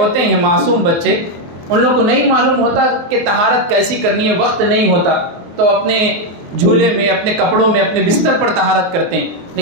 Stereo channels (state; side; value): late; left; 23 ms